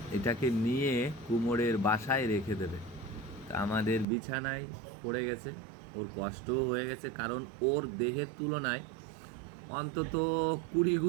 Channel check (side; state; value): left; drops out; at 4.0 s